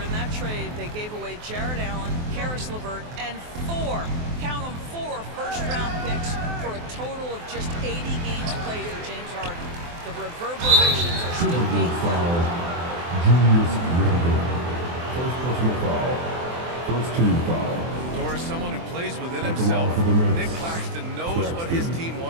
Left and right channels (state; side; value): late; left; 23 ms